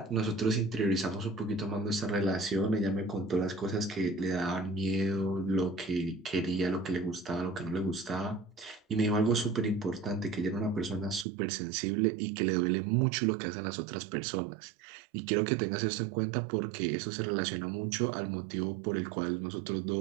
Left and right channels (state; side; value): drops out; left; at 11.2 s